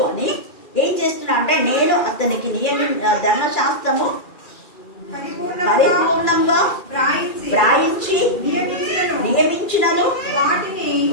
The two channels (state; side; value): late; right; 2.3 ms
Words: అని ఏం చేస్తున్నా అంటే నేను అతనికి ధర్మశాస్త్రము పరిపూర్ణంగా వ్రాయించి నియమించినను